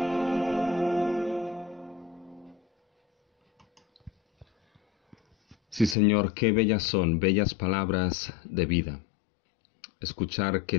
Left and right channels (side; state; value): right; drops out; at 6.0 s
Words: Sí, Señor, qué bellas son, bellas palabras de vida. Escuchar